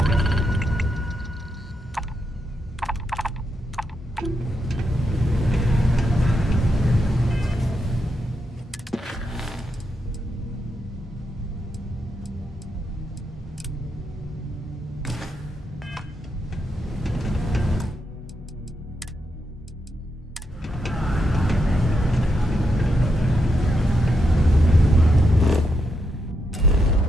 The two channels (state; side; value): normal; both; correlation 0.82